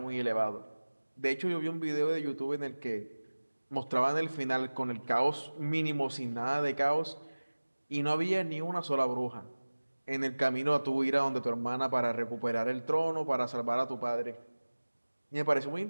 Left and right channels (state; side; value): inverted; both; correlation -1.00